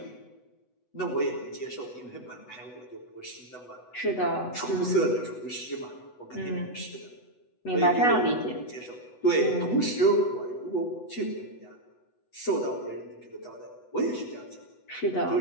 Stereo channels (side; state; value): right; late; 8.1 ms